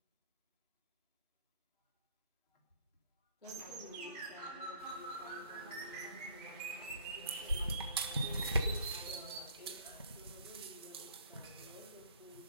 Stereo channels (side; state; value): both; inverted; correlation -0.57